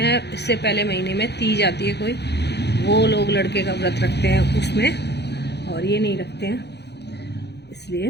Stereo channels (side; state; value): right; late; 0.49 ms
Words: इससे पहले महीने में तीज आती है कोई, वो लोग लड़के का व्रत रखते हैं उसमें, और ये नहीं रखते हैं,